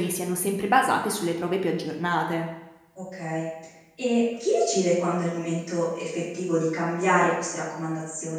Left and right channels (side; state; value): both; identical; correlation 1.00